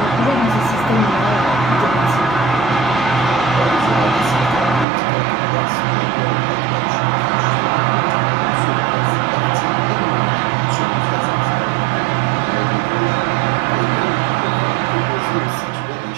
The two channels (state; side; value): drops out; left; at 4.9 s